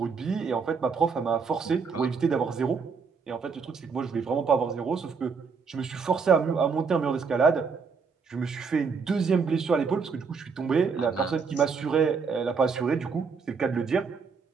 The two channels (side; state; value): left; quieter; 5.4 dB